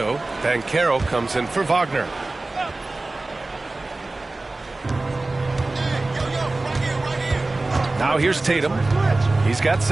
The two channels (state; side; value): quieter; left; 3.1 dB